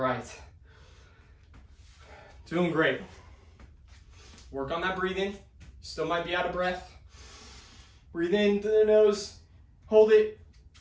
Doing great. Work on that breathing. Still might be out of breath. Breathe in through the nose, hold it,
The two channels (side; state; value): both; identical; correlation 1.00